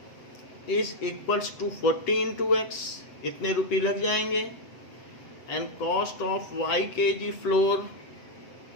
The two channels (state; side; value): late; right; 7.8 ms